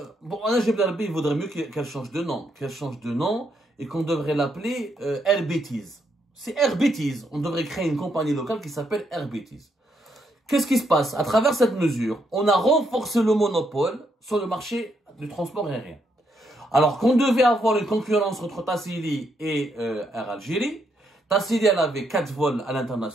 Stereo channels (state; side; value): normal; both; correlation 0.77